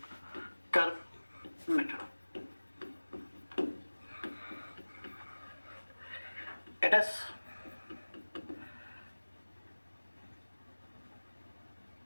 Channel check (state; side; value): inverted; both; correlation -1.00